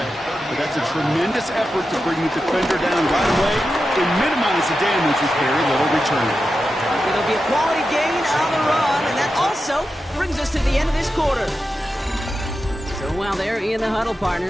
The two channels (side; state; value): both; normal; correlation 0.90